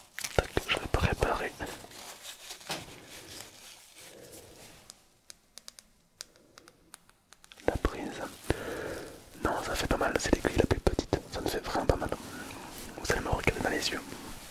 Tac, je vais préparer la prise. Non, ça fait pas mal, c'est l'aiguille la plus petite, ça me fait vraiment pas mal. Vous allez me regarder dans les yeux.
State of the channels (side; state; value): both; identical; correlation 1.00